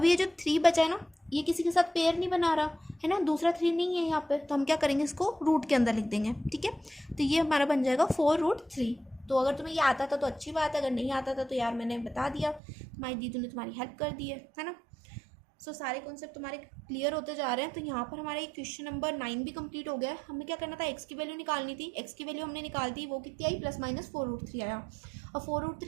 ये जो 3 बचा है ना, ये किसी के साथ पेयर नहीं बना रहा है ना, दूसरा 3 नहीं है यहाँ पे, तो हम क्या करेंगे, इसको रूट के अंदर लिख देंगे, ठीक है। तो ये हमारा बन जाएगा 4√3। तो अगर तुम्हें ये आता था तो अच्छी बात है, अगर नहीं आता था तो यार मैंने बता दिया, तुम्हारी दीदी ने तुम्हारी हेल्प कर दी है ना। सो सारे कॉन्सेप्ट तुम्हारे क्लियर होते जा रहे हैं। तो यहाँ पर हमारा ये क्वेश्चन नंबर 9 भी कंप्लीट हो गया है। हमें क्या करना था, एक्स की वैल्यू निकालनी थी, एक्स की वैल्यू हमने निकाल दी, वो कितनी आई, प्लस माइनस 4√3 आया। और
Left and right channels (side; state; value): left; drops out; at 12.6 s